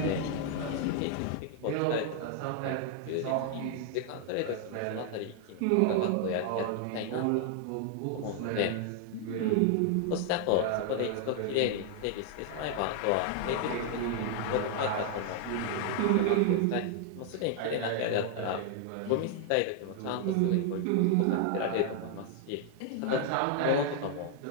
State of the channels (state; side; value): different; both; correlation 0.00